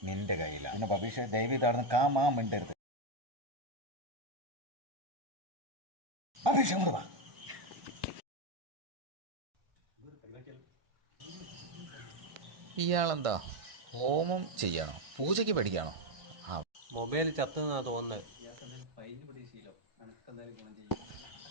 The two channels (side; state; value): left; late; 1.5 ms